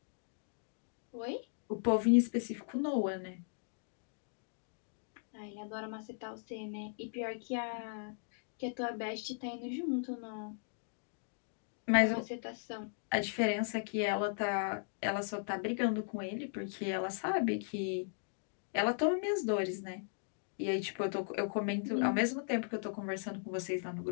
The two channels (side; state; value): right; silent; digital silence